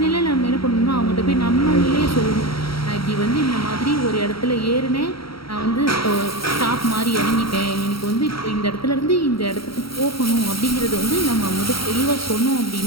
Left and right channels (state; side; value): late; right; 0.75 ms